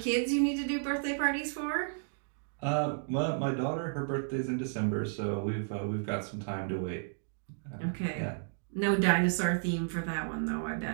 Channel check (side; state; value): left; silent; digital silence